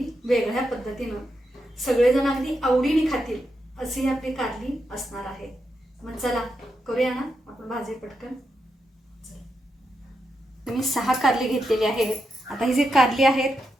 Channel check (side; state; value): both; normal; correlation 0.85